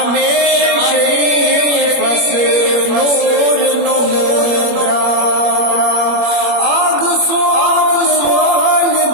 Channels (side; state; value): left; late; 21 ms